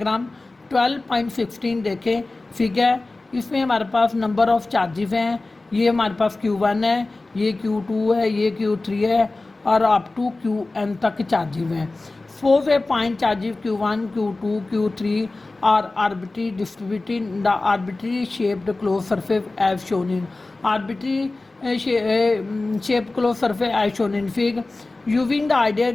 12.16 देखें फिगर, इसमें हमारे पास नंबर ऑफ चार्जेस हैं। ये हमारे पास Q1 है, ये Q2 है, ये Q3 है और अप टू Qn तक चार्जेस हैं। Suppose a point charges Q1, Q2, Q3 are arbitrary distributed in the arbitrary shaped close surface as shown in arbitrary shape close surface as shown in fig. Using the idea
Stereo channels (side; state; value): right; quieter; 3.2 dB